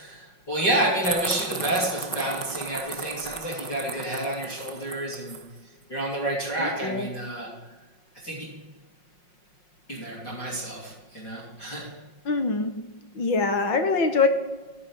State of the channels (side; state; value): right; late; 5.5 ms